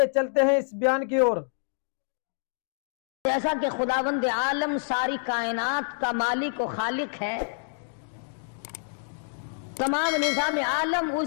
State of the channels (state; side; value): silent; right; digital silence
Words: चलते हैं इस बयान की ओर। जैसा कि खुदावंद आलम सारी कायनात का मालिक और खालिक है, तमाम निज़ाम आलम